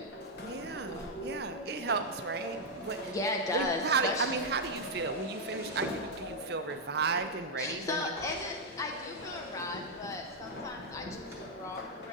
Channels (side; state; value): both; normal; correlation -0.01